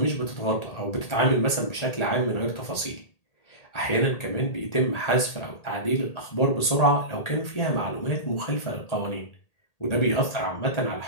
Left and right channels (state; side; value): late; right; 1.8 ms